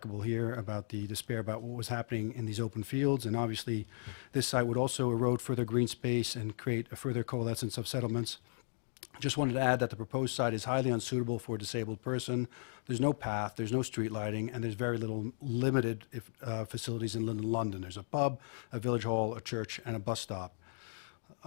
here about the despair about what was happening in these open fields, and obviously this site would also erode further green space and create a further coalescence of settlements. Just wanted to add that the proposed site is highly unsuitable for a disabled person. There's no path, there's no street lighting, and there's very limited facilities in London. There's a pub, a village hall, a church, and a bus stop.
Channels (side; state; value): right; silent; digital silence